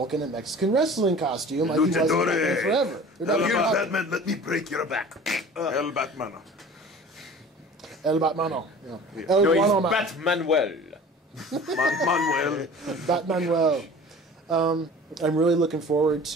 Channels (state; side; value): normal; both; correlation 0.42